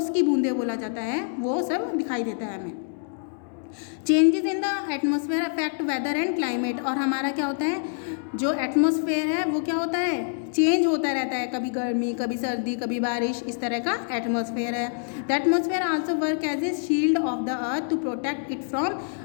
की बूंदें बोला जाता है, वो सब दिखाई देता है हमें। Changes in the atmosphere affect weather and climate, और हमारा क्या होता है, जो एटमॉस्फेयर है वो क्या होता है, चेंज होता रहता है, कभी गर्मी, कभी सर्दी, कभी बारिश, इस तरह का एटमॉस्फेयर है। The atmosphere also work as a shield of the earth to protect it from,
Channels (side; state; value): right; silent; digital silence